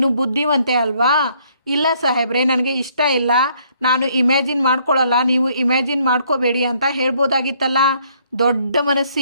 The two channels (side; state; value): both; inverted; correlation -0.66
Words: ಬುದ್ಧಿವಂತೆ ಅಲ್ವಾ? ಇಲ್ಲ ಸಾಹೇಬ್ರೆ, ನನಗೆ ಇಷ್ಟ ಇಲ್ಲ, ನಾನು ಇಮ್ಯಾಜಿನ್ ಮಾಡ್ಕೊಳ್ಳಲ್ಲ, ನೀವು ಇಮ್ಯಾಜಿನ್ ಮಾಡ್ಕೋಬೇಡಿ ಅಂತ ಹೇಳ್ಬೋದಾಗಿತ್ತಲ್ಲ. ದೊಡ್ಡ